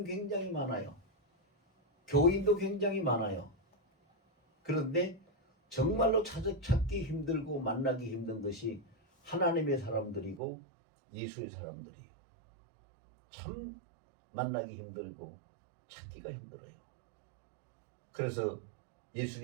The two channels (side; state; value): left; drops out; at 10.4 s